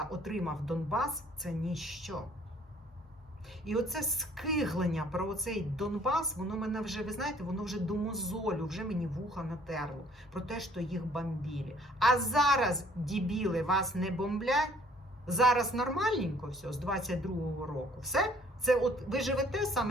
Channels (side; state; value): both; normal; correlation 0.59